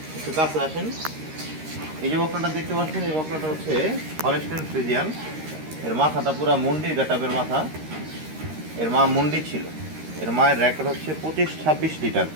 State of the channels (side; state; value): left; late; 13 ms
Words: একটু কাছে আসেন। এই যে বকনাটা দেখতে পাচ্ছেন, এই বকনাটা হচ্ছে হলস্টাইন ফ্রিজিয়ান। এর মাথাটা পুরা মুন্ডির গাটাবের মাথা। এর মা মুন্ডি ছিল। এর মায়ের রেকর্ড হচ্ছে 25-26 লিটার।